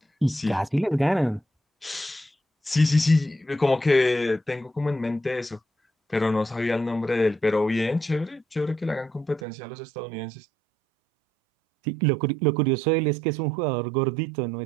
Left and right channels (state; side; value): drops out; left; at 9.5 s